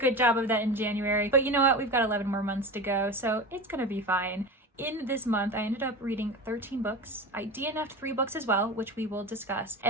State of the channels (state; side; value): normal; both; correlation 0.28